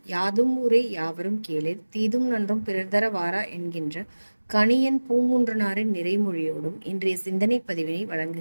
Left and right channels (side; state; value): both; inverted; correlation -1.00